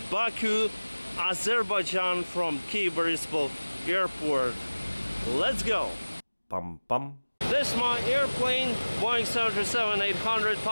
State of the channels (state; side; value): inverted; both; correlation -1.00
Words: Baku, Azerbaijan from Kyiv Airport. Let's go! Pum pum. This is my airplane, Boeing 737-800